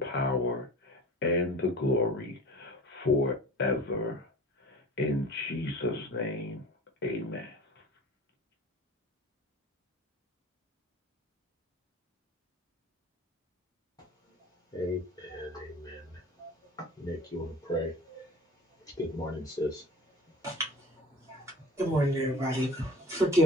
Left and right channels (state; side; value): normal; both; correlation 0.40